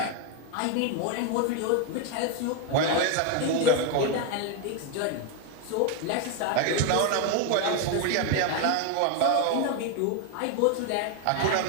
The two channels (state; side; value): different; both; correlation 0.01